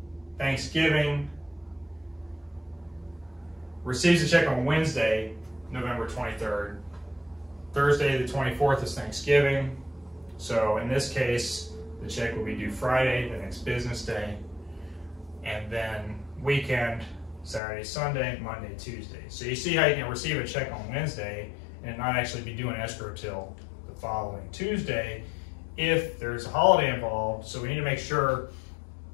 Thanksgiving, receives a check on Wednesday, November 23rd. Thursday, the 24th is Thanksgiving. So in this case, the check will be due Friday, the next business day, and then weekend, Saturday, Sunday, Monday, Tuesday. So you see how you can receive a check on Wednesday and not actually be doing escrow till the following Tuesday if there's a holiday involved. So we need to make sure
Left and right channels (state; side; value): drops out; right; at 17.6 s